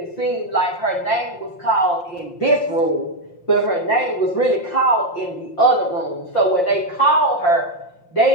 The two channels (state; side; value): late; right; 5.7 ms